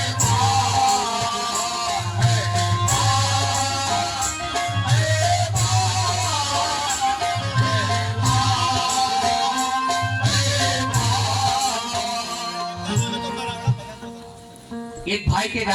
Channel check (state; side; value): identical; both; correlation 1.00